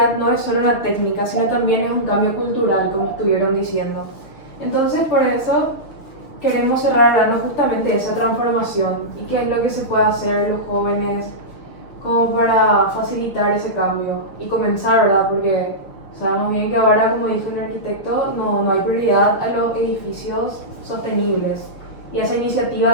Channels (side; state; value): right; late; 6.6 ms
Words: no es solo una técnica, sino también es un cambio cultural, como estuvieron diciendo. Entonces, por eso queremos cerrar hablando justamente de esa transformación y qué es lo que se puede hacer los jóvenes como para facilitar ese cambio y comenzar, ¿verdad? Porque sabemos bien que ahora, como dijo el arquitecto, no hay prioridad a los edificios sostenibles y esa iniciativa